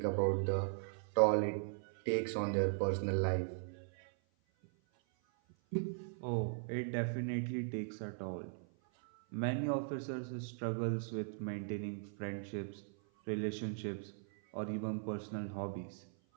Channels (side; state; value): left; silent; 52 dB below the other